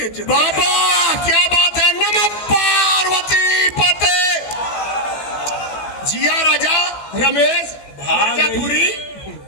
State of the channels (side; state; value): right; late; 15 ms